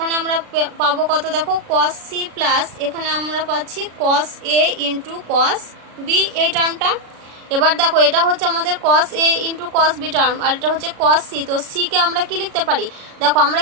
আমরা পাবো কত, দেখো কস সি প্লাস এখানে আমরা পাচ্ছি cos A into cos B এই টার্মটা। এবার দেখো এটা হচ্ছে আমাদের cos A into cos B term, আর এটা হচ্ছে কস সি। তো সি কে আমরা কি লিখতে পারি, দেখো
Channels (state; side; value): late; left; 36 ms